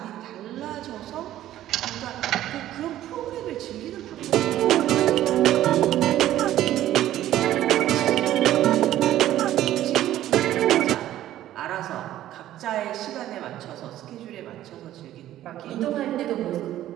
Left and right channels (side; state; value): left; quieter; 13.2 dB